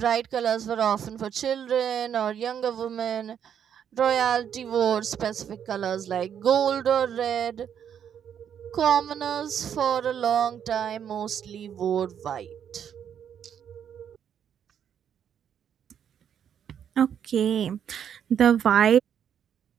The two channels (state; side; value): quieter; left; 8.7 dB